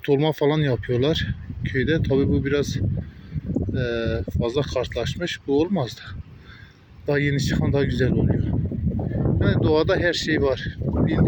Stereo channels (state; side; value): identical; both; correlation 1.00